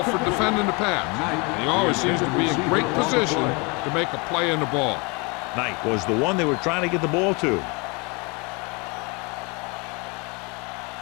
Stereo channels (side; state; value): right; quieter; 29.7 dB